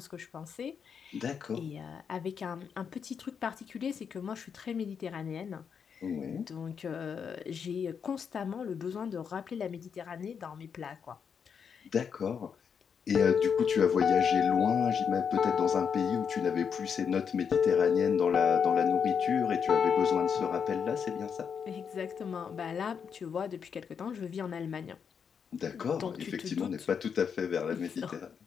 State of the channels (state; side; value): quieter; right; 6.9 dB